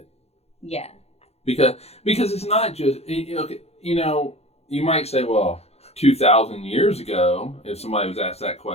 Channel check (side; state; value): right; late; 0.30 ms